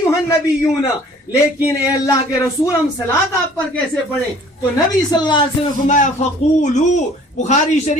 النبیون، لیکن اے اللہ کے رسول ہم صلاۃ آپ پر کیسے پڑھیں؟ تو نبی صلی اللہ علیہ وسلم نے فرمایا فقولوا، بخاری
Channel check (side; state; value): both; normal; correlation 0.53